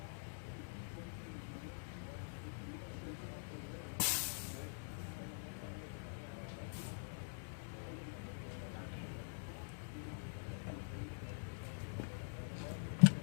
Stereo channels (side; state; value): right; silent; digital silence